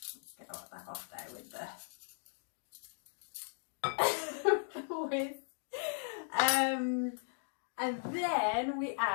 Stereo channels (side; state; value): right; silent; digital silence